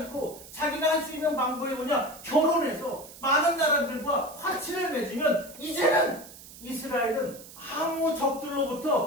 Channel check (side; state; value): right; noise; hiss, 17 dB below the sound